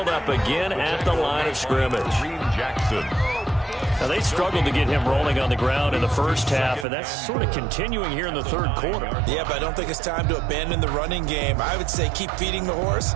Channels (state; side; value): drops out; left; at 6.9 s